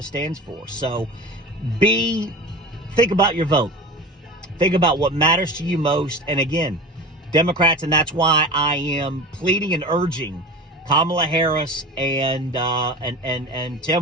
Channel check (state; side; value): normal; both; correlation 0.33